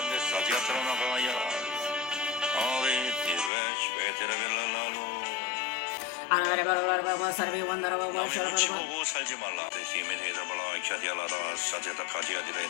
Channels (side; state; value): right; drops out; at 3.5 s